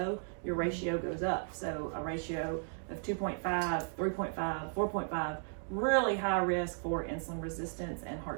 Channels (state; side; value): silent; left; 54 dB below the other